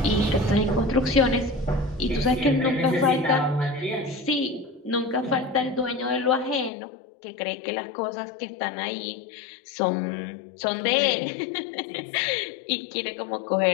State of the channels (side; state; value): right; drops out; at 6.7 s